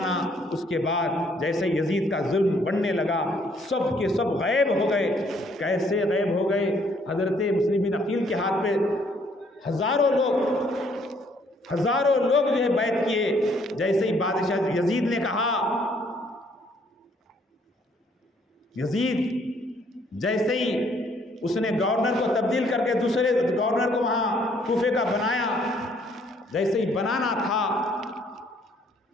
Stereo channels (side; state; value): both; normal; correlation 0.65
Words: اس کے بعد جیسے یزید کا ظلم بڑھنے لگا سب کے سب غائب ہو گئے۔ کیسے غائب ہو گئے؟ حضرت مسلم بن عقیل کے ہاتھ پہ ہزاروں لوگ جو ہے بیعت کیے۔ جیسے ہی بادشاہ یزید نے کہا، یزید جیسے ہی اس نے گورنر کو تبدیل کر کے دوسرے گورنر کو وہاں کوفے کا بنایا، جیسے ہی بنانا تھا